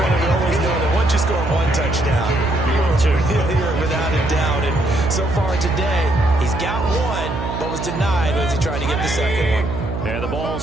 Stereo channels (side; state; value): right; noise; hum, 6 dB below the sound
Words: we always know that once you score 1 touchdown, you're without a doubt. And so far today, he's got 1, but was denied as he tried to get the second one. And the ball